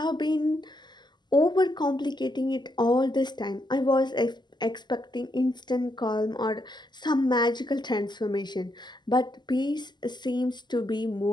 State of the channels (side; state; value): right; late; 0.21 ms